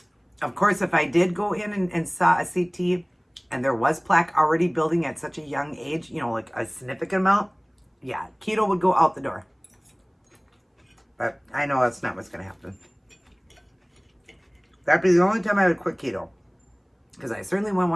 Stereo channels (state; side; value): identical; both; correlation 1.00